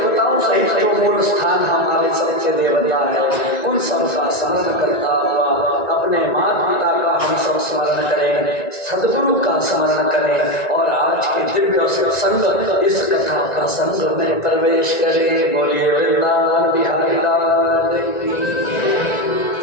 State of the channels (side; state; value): right; late; 1.9 ms